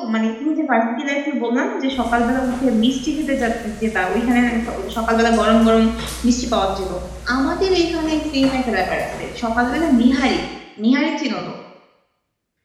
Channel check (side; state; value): both; identical; correlation 1.00